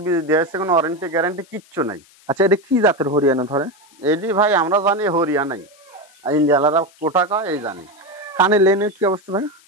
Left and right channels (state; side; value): noise; left; hiss, 29 dB below the sound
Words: বীজ দিয়েছে, কোনো ওয়ারেন্টি গ্যারান্টি কিচ্ছু নাই। আচ্ছা, এটা কি জাতের হরিয়ানা ধরে? এটি ভাই আমরা জানি হরিয়ানাই, ইন্ডিয়ালারা কোটা কয় এই জানি। কানের লেনের কি অবস্থা ভাই?